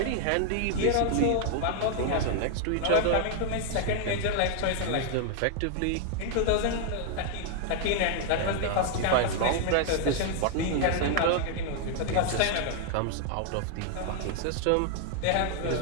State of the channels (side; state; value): both; different; correlation 0.00